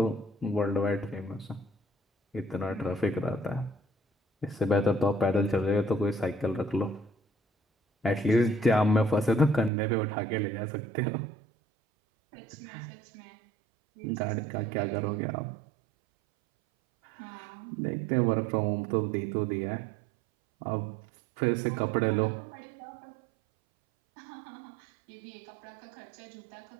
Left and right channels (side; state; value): left; drops out; at 9.7 s